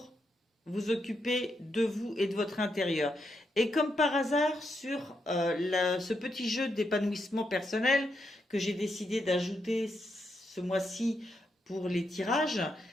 vous occuper de vous et de votre intérieur. Et comme par hasard, sur ce petit jeu d'épanouissement personnel que j'ai décidé d'ajouter ce mois-ci pour les tirages,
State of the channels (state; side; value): normal; both; correlation 0.81